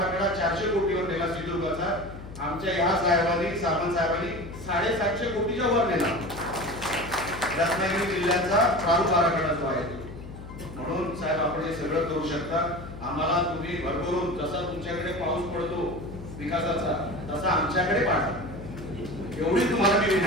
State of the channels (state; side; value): noise; left; hum, 13 dB below the sound